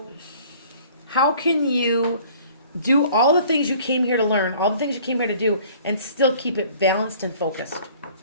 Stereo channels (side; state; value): both; inverted; correlation -0.52